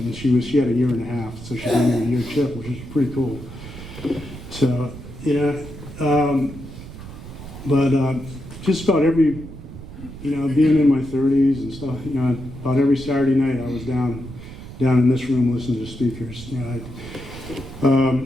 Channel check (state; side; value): noise; right; rumble, 13 dB below the sound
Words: and she had a year and a half, so she gave me a year chip, which is pretty cool. So but just about every, being in my 30s and stuff, about every Saturday night I was down in this room listening to speakers.